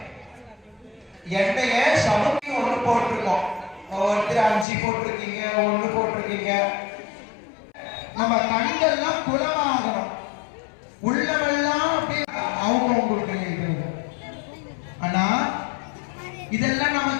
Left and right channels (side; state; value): right; drops out; at 4.7 s